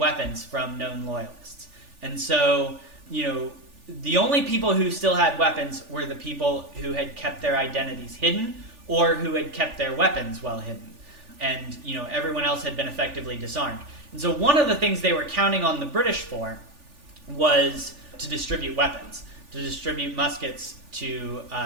from known loyalists. And so, the only people who still had weapons were the people who had kept their identities hidden or who had kept their weapons well hidden. And, everyone else had been effectively disarmed. And so one of the things they were counting on the British for was to distribute weapons, to distribute muskets to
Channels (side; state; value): left; late; 3.4 ms